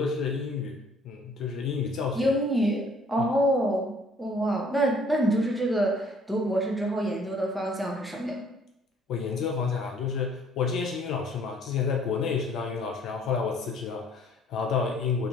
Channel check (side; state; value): both; normal; correlation 0.59